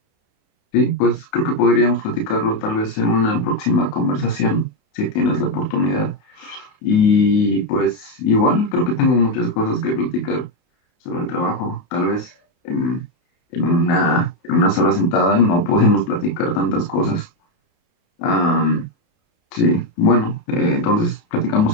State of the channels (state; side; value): late; right; 28 ms